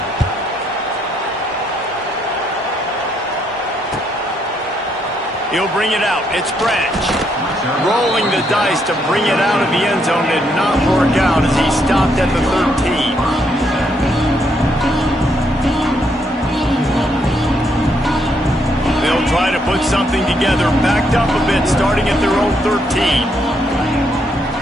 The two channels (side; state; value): both; normal; correlation 0.74